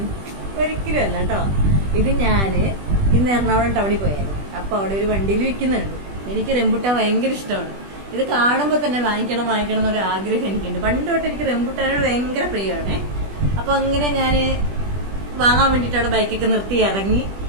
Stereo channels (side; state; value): left; late; 20 ms